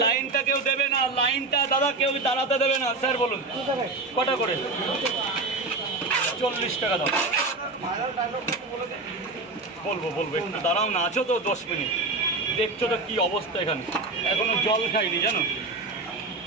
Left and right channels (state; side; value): quieter; left; 3.2 dB